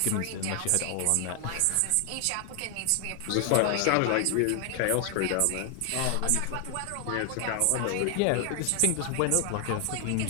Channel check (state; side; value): different; both; correlation 0.00